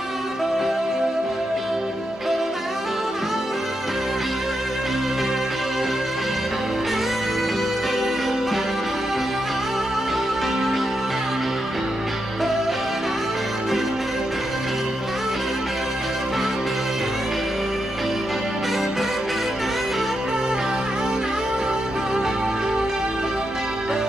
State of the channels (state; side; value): normal; both; correlation 0.85